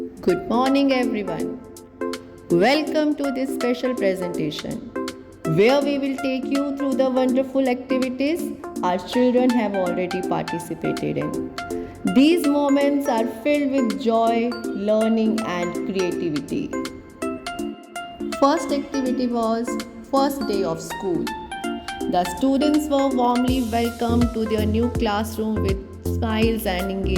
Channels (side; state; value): both; identical; correlation 1.00